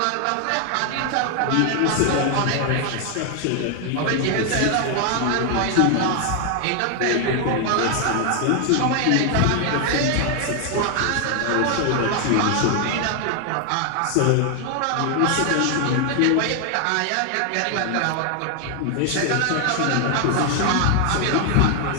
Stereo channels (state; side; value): different; both; correlation 0.00